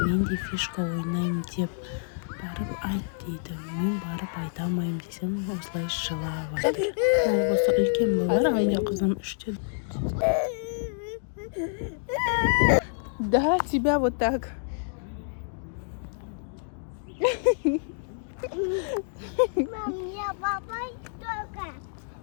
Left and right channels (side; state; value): right; silent; digital silence